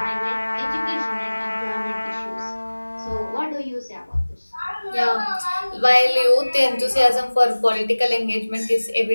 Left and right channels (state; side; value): inverted; both; correlation -1.00